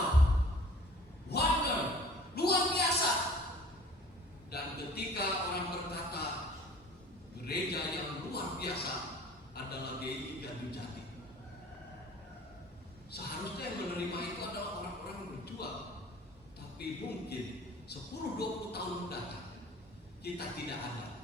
wonder, luar biasa. Dan ketika orang berkata gereja yang luar biasa adalah GI Gardu Jati, seharusnya yang menerima itu adalah orang-orang yang berjuang. Tapi mungkin 10-20 tahun mendatang kita tidak ada.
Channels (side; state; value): both; normal; correlation 0.48